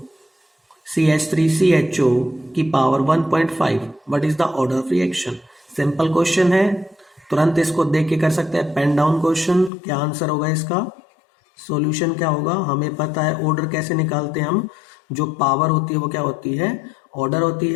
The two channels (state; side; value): drops out; right; at 9.7 s